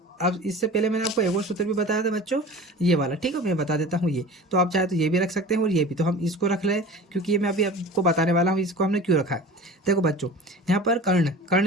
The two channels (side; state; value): both; normal; correlation 0.38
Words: अब इससे पहले मैंने आपको एक और सूत्र भी बताया था बच्चों, ये वाला। ठीक है, मैं बता देता हूँ ये। तो आप चाहे तो ये भी रख सकते हैं और ये भी। तो हम इसको रख लें क्योंकि ये मैं अभी आपको बताने वाला हूँ, इसको हमने क्यों रखा है। देखो बच्चों, यहाँ पर कर्ण,